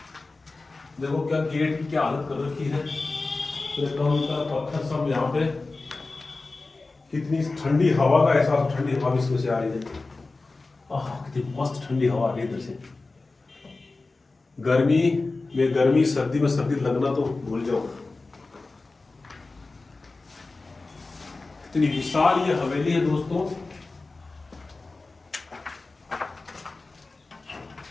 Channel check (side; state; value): right; quieter; 3.5 dB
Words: देखो क्या गेट की क्या हालत कर रखी है, पत्थर सब यहाँ पे, कितनी ठंडी हवा का एहसास, ठंडी हवा इसमें से आ रही है, कितनी मस्त ठंडी हवा आ रही है इधर से। गर्मी में गर्मी, सर्दी में सर्दी लगना तो भूल जाओ। इतनी विशाल ये हवेली है दोस्तों,